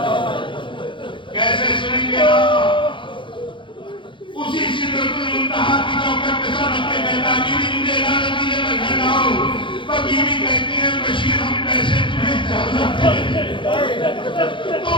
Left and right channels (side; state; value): right; late; 0.24 ms